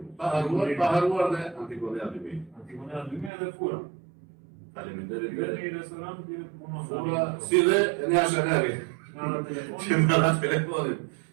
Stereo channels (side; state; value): left; drops out; at 3.3 s